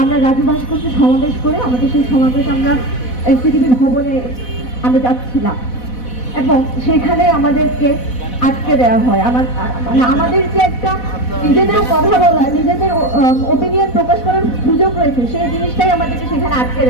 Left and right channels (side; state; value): right; late; 4.1 ms